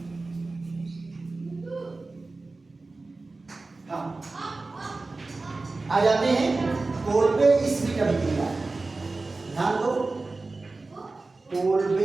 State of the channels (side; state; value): left; quieter; 3.5 dB